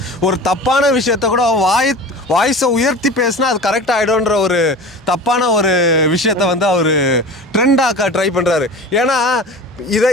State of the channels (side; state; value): both; normal; correlation 0.36